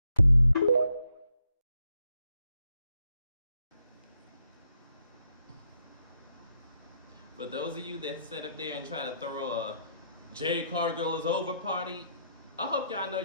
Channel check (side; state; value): both; inverted; correlation -0.77